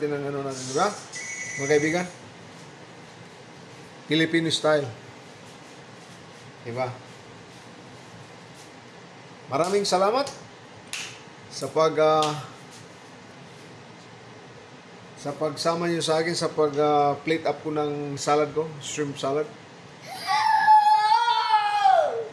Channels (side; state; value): both; identical; correlation 1.00